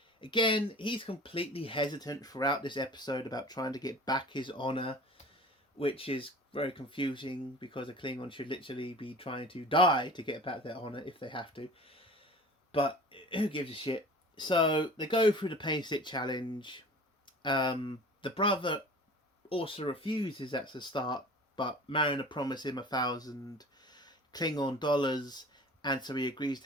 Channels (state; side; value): normal; both; correlation 0.41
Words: again, he's completely hesitant throughout this episode about trying to get back his honor, which is very confusing because a Klingon should literally be trying to die to get back their honor if they have to. But who gives a shit? So they go through the pain stick challenge. The brother also refuses at the start, but Mariner promised him 1,000 Klingon dollars, and so he agrees